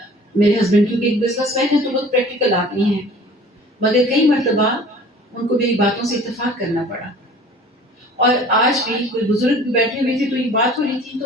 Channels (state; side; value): normal; both; correlation 0.47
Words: میرے ہسبینڈ کیونکہ ایک بزنس مین ہے تو بہت پریکٹیکل آدمی ہیں، مگر کئی مرتبہ ان کو میری باتوں سے اتفاق کرنا پڑا. اور آج بھی کوئی بزرگ بیٹھے ہوئے تھے تو یہ بات ہو رہی تھی